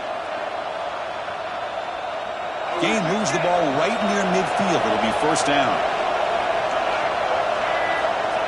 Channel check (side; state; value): both; identical; correlation 1.00